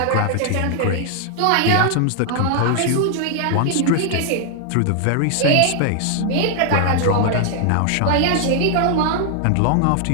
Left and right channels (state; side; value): different; both; correlation 0.00